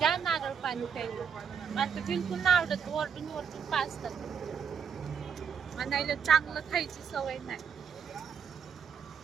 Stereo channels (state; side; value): quieter; left; 7.0 dB